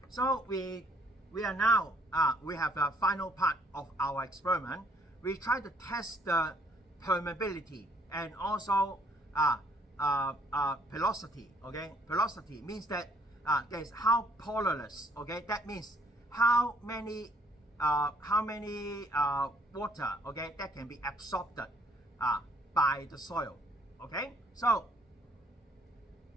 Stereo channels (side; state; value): both; normal; correlation 0.64